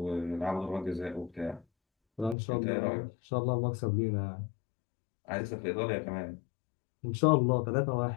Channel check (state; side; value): drops out; right; at 2.4 s